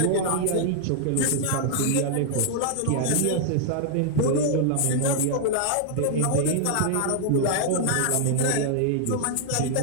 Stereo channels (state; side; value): different; both; correlation 0.00